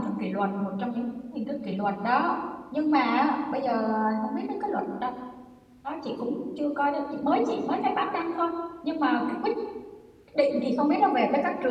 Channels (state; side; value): identical; both; correlation 1.00